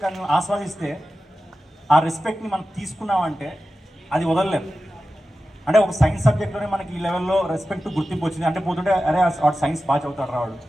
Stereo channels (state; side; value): normal; both; correlation 0.94